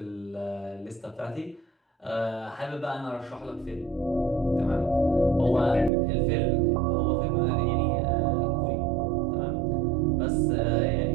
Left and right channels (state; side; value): drops out; left; at 5.9 s